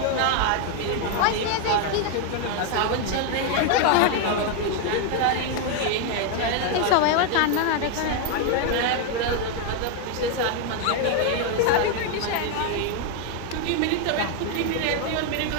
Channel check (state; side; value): different; both; correlation 0.01